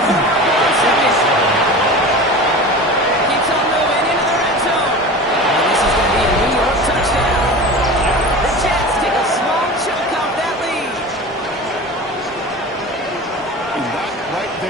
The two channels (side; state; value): both; normal; correlation 0.33